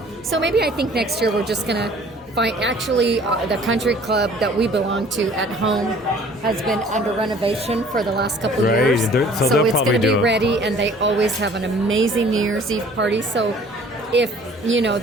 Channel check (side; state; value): both; normal; correlation 0.52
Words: So maybe I think next year we're just going to find, actually, the country club that we belong to at home has been under renovation for the last couple of years. So it's going to be ready, and they always have an amazing New Year's Eve party. So if